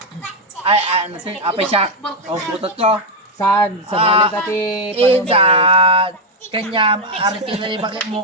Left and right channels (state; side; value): normal; both; correlation 0.03